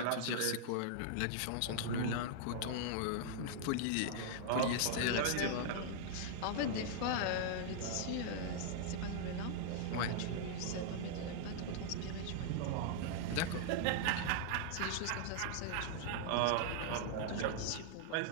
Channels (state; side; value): different; both; correlation -0.01